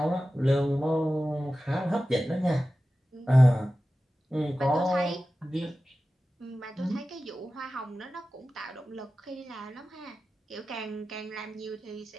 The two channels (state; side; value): normal; both; correlation 0.94